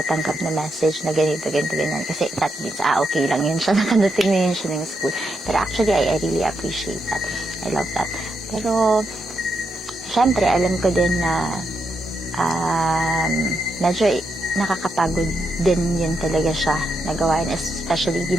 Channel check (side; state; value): both; normal; correlation 0.82